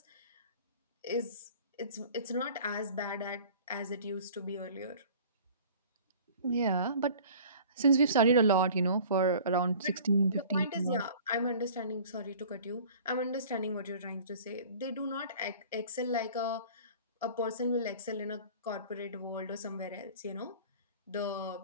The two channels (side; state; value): both; inverted; correlation -0.46